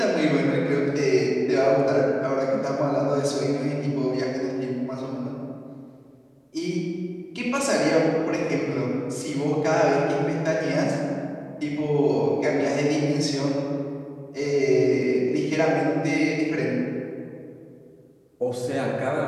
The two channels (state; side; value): identical; both; correlation 1.00